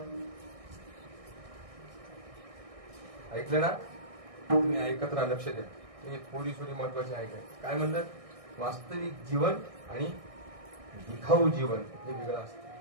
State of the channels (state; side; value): late; left; 1.6 ms